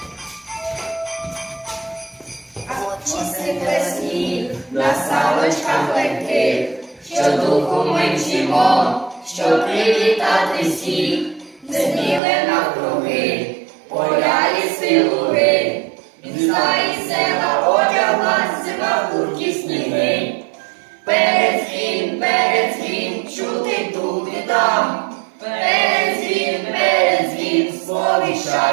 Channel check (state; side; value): drops out; left; at 12.2 s